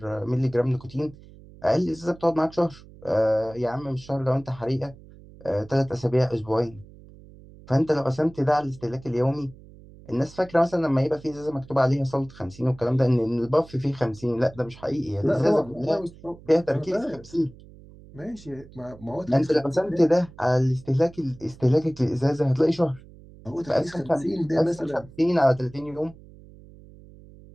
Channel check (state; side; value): noise; right; hum, 21 dB below the sound